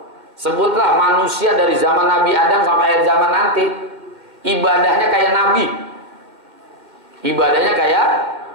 Sebutlah manusia dari zaman Nabi Adam sampai akhir zaman nanti, ibadahnya kayak Nabi. Ibadahnya kayak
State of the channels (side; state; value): left; late; 2.1 ms